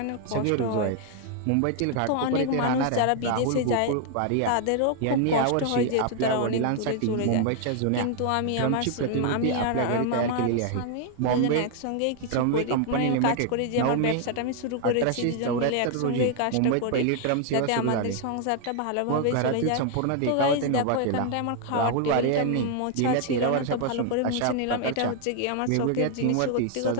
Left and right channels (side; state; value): both; different; correlation 0.00